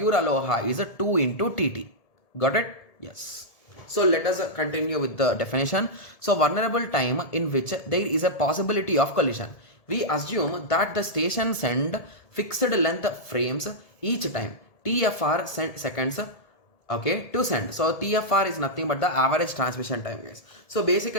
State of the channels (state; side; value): late; right; 1.7 ms